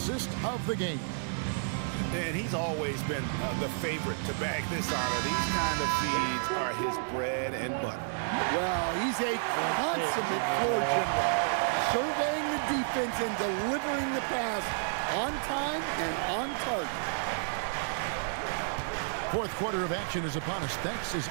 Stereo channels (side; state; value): left; silent; digital silence